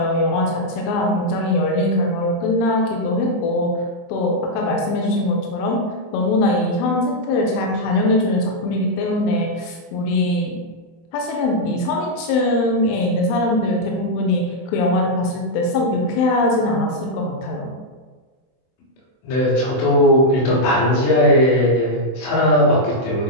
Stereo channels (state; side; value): late; right; 24 ms